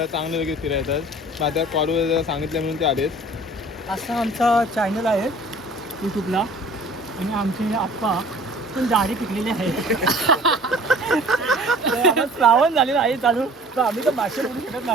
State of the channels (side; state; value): both; normal; correlation 0.48